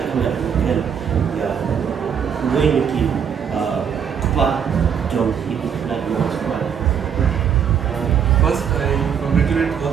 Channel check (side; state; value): left; quieter; 7.7 dB